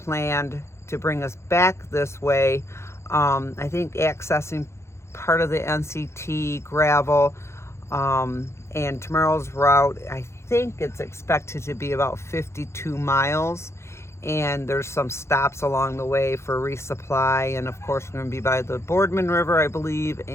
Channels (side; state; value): right; late; 0.13 ms